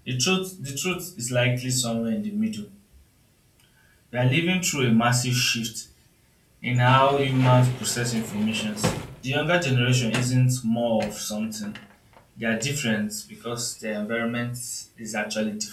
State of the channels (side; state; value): both; identical; correlation 1.00